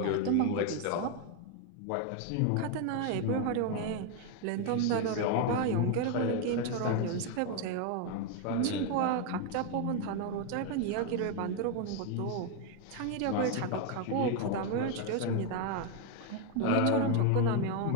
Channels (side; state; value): both; different; correlation 0.01